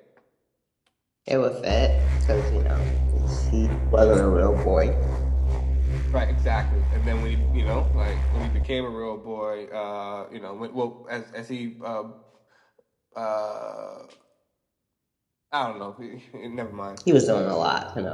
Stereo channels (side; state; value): both; identical; correlation 1.00